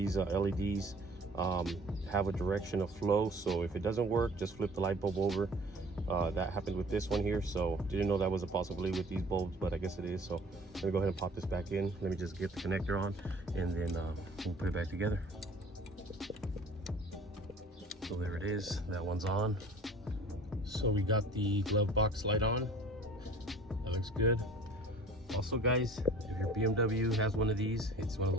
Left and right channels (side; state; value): both; normal; correlation 0.48